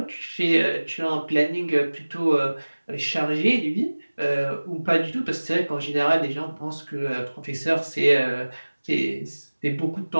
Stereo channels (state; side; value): inverted; both; correlation -1.00